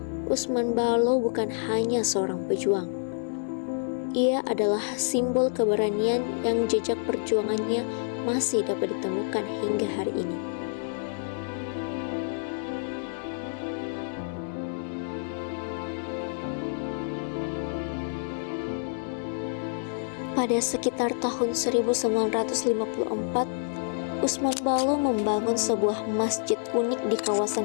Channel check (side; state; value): right; silent; digital silence